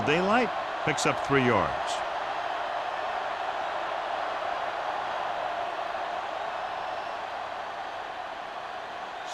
daylight, picks up 3 yards.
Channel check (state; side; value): identical; both; correlation 1.00